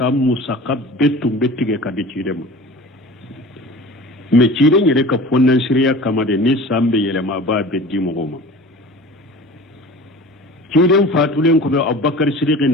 saka betum bettige ka de cidema me ciden yere ka fonnan shirya kama de ni sambe yele ma ba beddi mo goma ciden fatulen ko be abubakar siddiq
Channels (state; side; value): normal; both; correlation 0.40